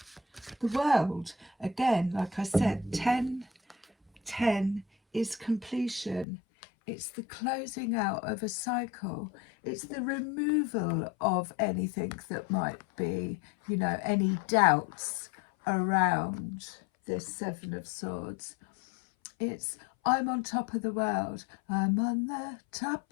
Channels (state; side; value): drops out; right; at 6.2 s